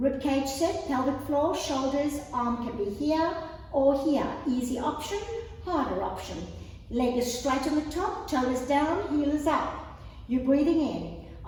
cage set, pelvic floor, shoulders, arm can be here or here. Easy option, harder option. Leg is straight on the top, toe is down, heel is up. You're breathing in.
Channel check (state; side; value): identical; both; correlation 1.00